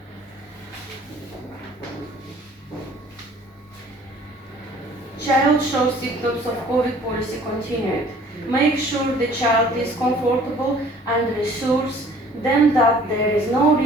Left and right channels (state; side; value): normal; both; correlation 0.54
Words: Child shows symptoms of COVID policy continued. Make sure the child is comfortable and reassures them that there is no